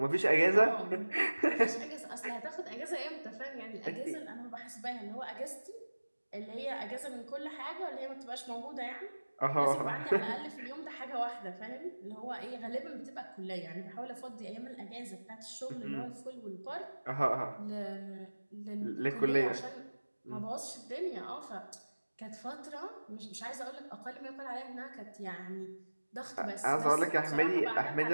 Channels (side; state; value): both; inverted; correlation -1.00